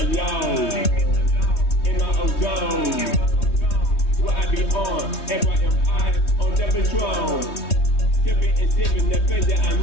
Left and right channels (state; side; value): late; right; 3.2 ms